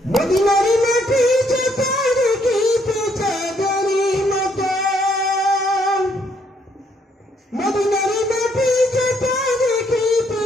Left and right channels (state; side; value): normal; both; correlation 0.70